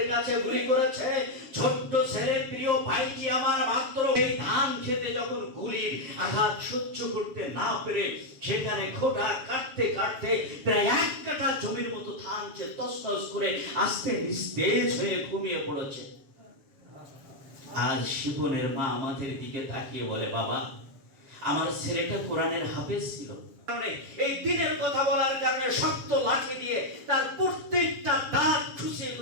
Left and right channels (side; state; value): left; late; 7.2 ms